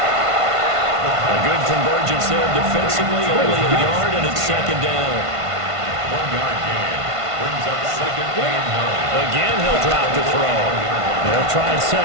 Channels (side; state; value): left; late; 1.5 ms